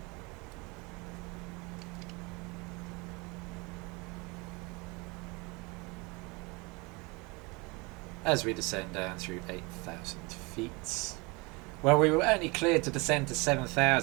As we descend down through 8,000 feet. Well, we were only cleared to descend to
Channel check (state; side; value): quieter; left; 27.0 dB